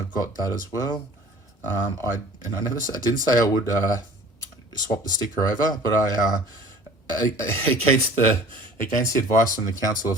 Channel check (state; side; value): normal; both; correlation 0.47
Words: got that as well. I didn't say I would swap the sticker over, but against the advice from the Council